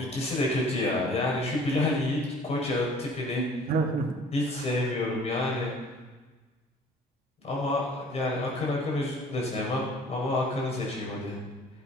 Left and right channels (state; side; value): normal; both; correlation 0.51